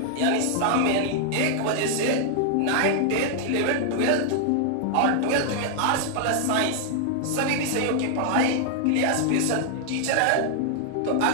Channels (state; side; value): different; both; correlation -0.01